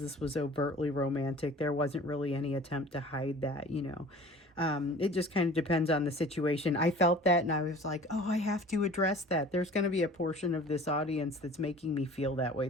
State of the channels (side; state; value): both; normal; correlation 0.45